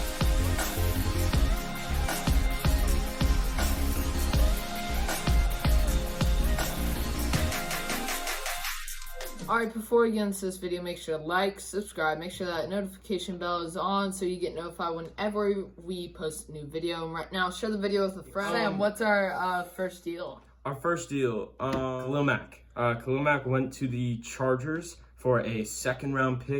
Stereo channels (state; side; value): identical; both; correlation 1.00